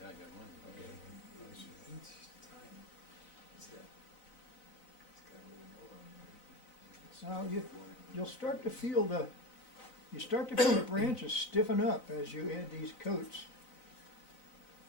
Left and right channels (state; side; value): late; right; 4.0 ms